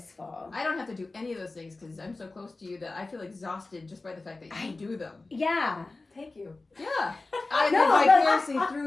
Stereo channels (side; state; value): right; quieter; 3.4 dB